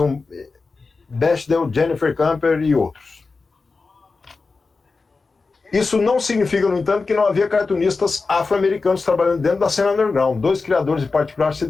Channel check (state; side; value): quieter; right; 4.1 dB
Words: Bechdel, Jennifer Camper e outros. Isso não significa, no entanto, que não havia cartunistas afro-americanos trabalhando dentro da cena underground. Dois criadores em particular se